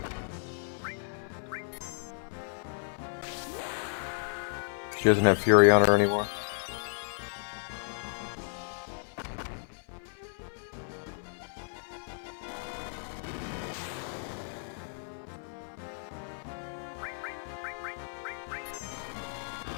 She doesn't have Fury on her anymore.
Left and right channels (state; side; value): silent; right; 56 dB below the other